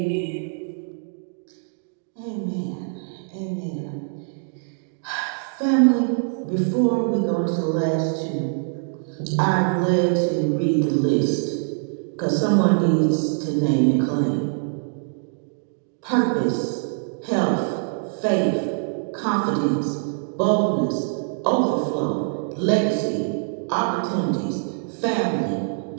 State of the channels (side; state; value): left; silent; digital silence